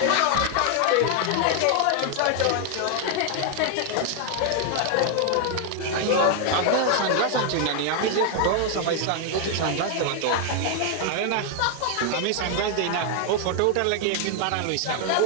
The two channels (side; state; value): both; different; correlation 0.00